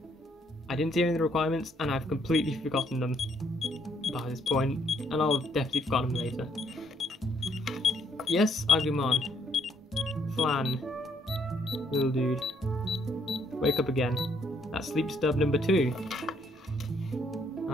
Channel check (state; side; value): normal; both; correlation 0.69